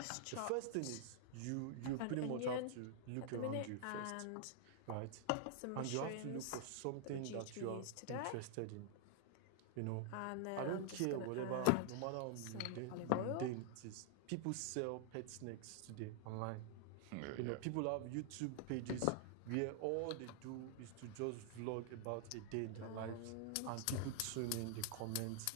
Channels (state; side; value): different; both; correlation 0.00